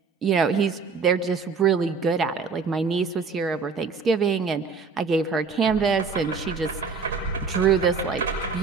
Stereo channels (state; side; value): quieter; left; 5.0 dB